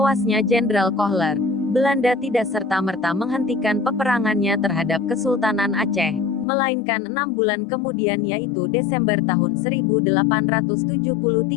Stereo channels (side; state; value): right; drops out; at 6.5 s